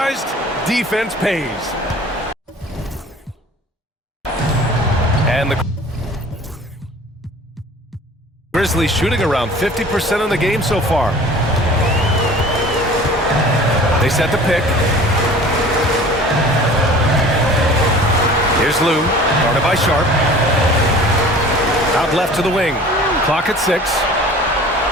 defense pays. And the Grizzlies shooting around 50% in the game so far. They set the pick. Here's Lou, guarded by Sharp. Out left to the wing. Clock at 6.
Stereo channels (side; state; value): both; normal; correlation 0.45